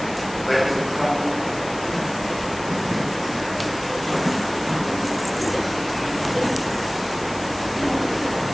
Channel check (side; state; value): left; noise; hiss, 15 dB below the sound